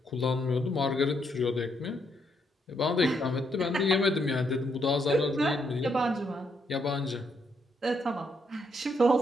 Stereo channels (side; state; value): both; normal; correlation 0.76